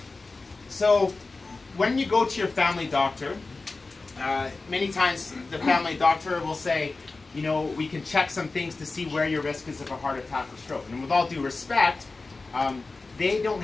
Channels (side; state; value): right; quieter; 3.6 dB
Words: So when you go to your family doctor, many times the family doctor will say, we can check some things to see where your risk is of a heart attack or stroke. And with all due respect, they don't